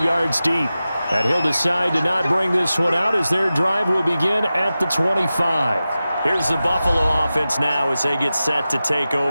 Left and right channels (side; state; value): both; inverted; correlation -0.94